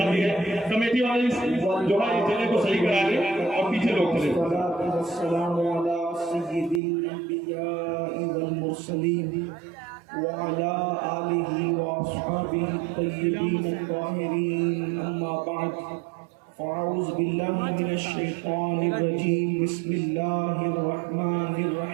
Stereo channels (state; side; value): drops out; left; at 6.8 s